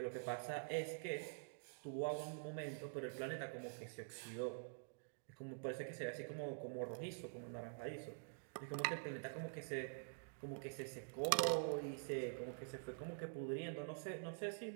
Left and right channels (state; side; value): silent; left; digital silence